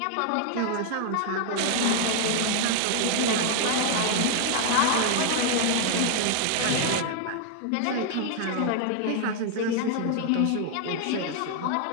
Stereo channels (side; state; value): both; different; correlation 0.00